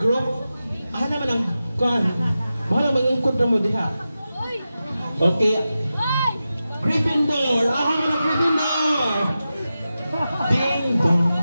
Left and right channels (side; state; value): both; inverted; correlation -0.92